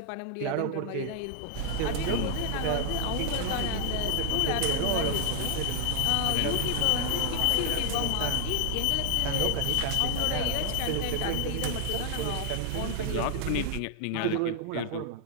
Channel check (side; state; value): both; different; correlation 0.00